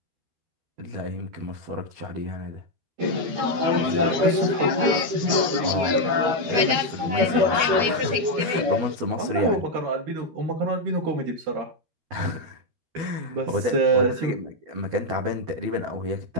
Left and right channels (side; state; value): left; late; 12 ms